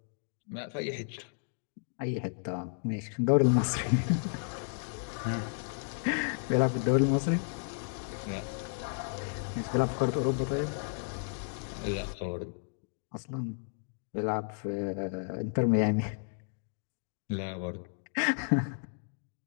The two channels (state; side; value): silent; right; digital silence